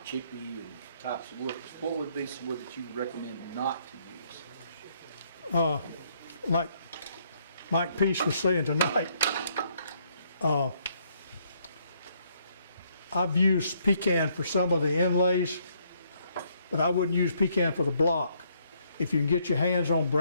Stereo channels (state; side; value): inverted; both; correlation -0.70